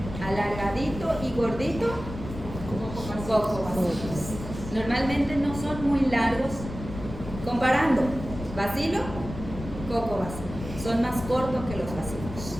alargadito y gordito, cocobacilos. Normalmente no son muy largos. Comparando bacilo, cocobacilo. Son más cortos que los bacilos,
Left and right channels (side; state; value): left; noise; rumble, 10 dB below the sound